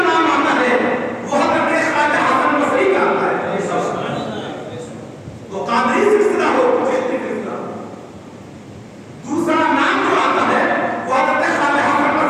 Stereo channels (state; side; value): identical; both; correlation 1.00